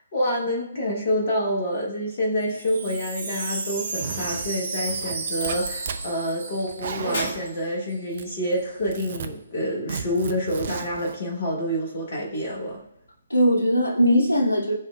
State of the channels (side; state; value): both; inverted; correlation -0.66